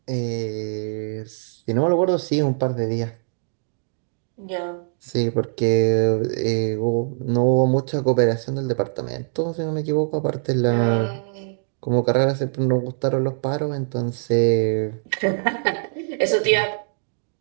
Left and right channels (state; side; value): silent; left; digital silence